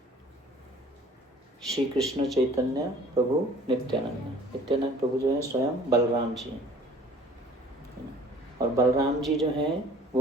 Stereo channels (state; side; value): normal; both; correlation 0.51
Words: श्री कृष्ण चैतन्य प्रभु नित्यानंद। नित्यानंद प्रभु जो है स्वयं बलराम जी हैं, और बलराम जी जो हैं